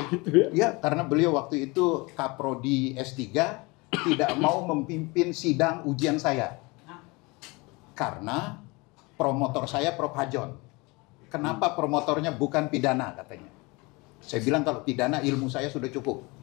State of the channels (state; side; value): quieter; right; 25.7 dB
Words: gitu ya. ya karena beliau waktu itu Kaprodi S3 tidak mau memimpin sidang ujian saya. Karena promotor saya Prof. Hajon. Kenapa promotornya bukan pidana katanya. Saya bilang kalau pidana ilmu saya sudah cukup.